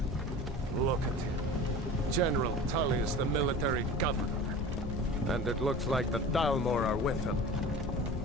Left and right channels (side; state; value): both; normal; correlation 0.36